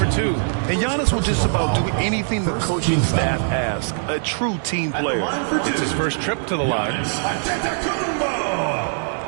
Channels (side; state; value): left; silent; digital silence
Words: 2. And Giannis will just about do anything the coaching staff asks. A true team player. It's his first trip to the line.